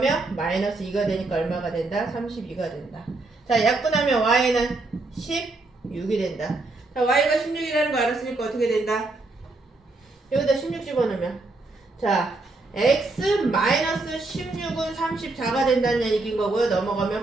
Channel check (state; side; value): quieter; left; 3.2 dB